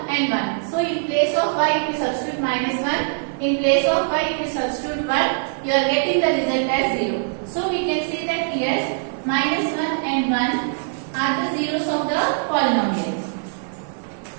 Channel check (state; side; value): silent; left; 57 dB below the other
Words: and 1. So in place of y, if you substitute minus 1, in place of y, if you substitute 1, you are getting the result as 0. So we can say that here minus 1 and 1 are the zeros of the polynomial.